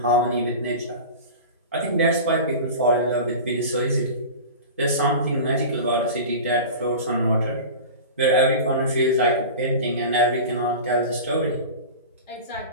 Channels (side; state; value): both; inverted; correlation -0.32